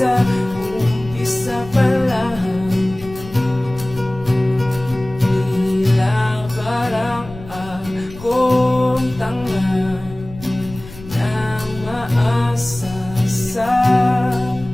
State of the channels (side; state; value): left; noise; rumble, 17 dB below the sound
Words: umpisa pa lang. Tila parang akong tanga na umaasa sa